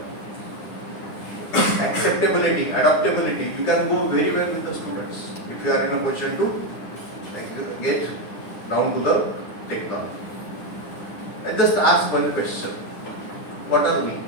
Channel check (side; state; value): right; late; 9.6 ms